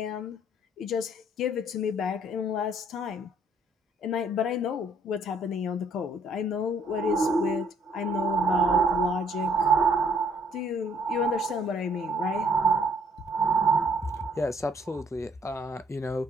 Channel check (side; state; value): both; normal; correlation 0.64